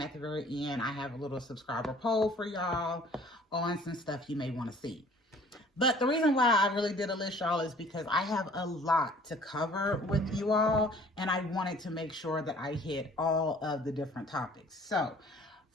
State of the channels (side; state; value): both; normal; correlation 0.52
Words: at the very end, I have a little subscriber poll for y'all on some stuff you may want to see. But the reason why I really did a list, y'all, is because I have a lot to cover with you all, and I wanted to make sure that I hit all of the different topics. So